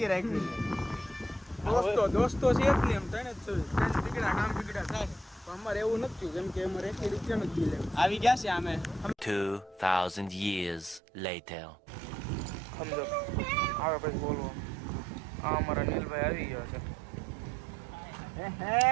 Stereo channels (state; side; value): drops out; left; at 11.0 s